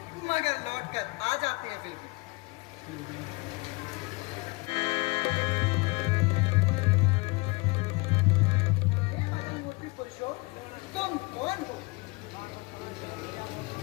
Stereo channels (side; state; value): right; quieter; 26.4 dB